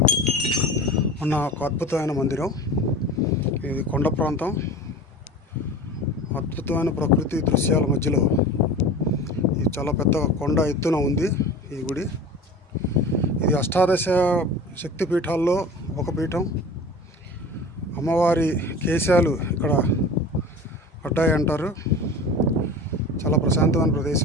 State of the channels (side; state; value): both; normal; correlation 0.36